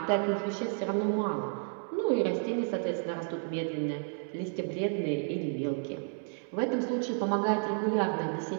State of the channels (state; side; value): silent; left; 57 dB below the other